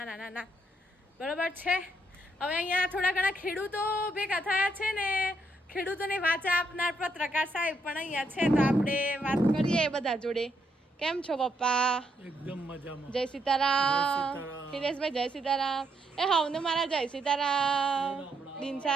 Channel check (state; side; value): normal; both; correlation 0.76